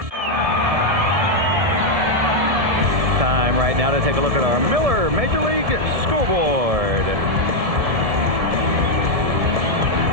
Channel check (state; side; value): late; left; 1.7 ms